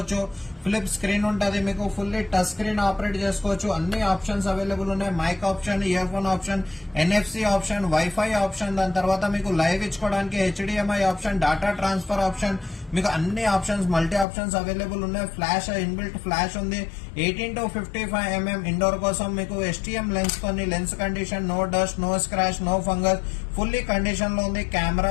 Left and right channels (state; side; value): drops out; right; at 14.2 s